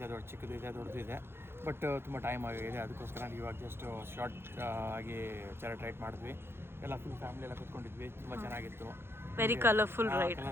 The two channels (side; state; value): left; late; 0.11 ms